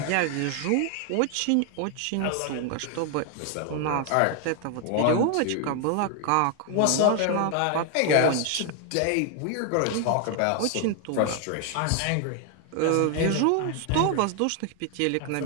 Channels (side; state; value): both; different; correlation 0.00